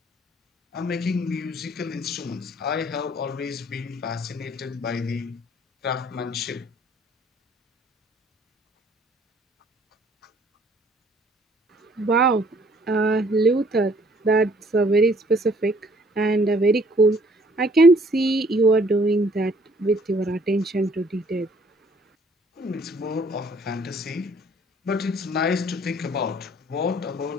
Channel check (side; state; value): both; normal; correlation 0.60